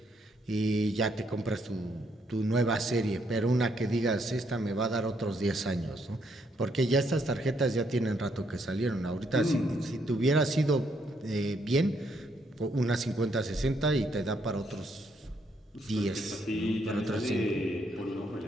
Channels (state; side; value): normal; both; correlation 0.73